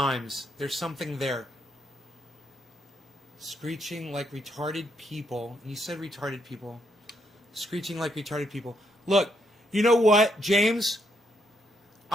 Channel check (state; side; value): normal; both; correlation 0.76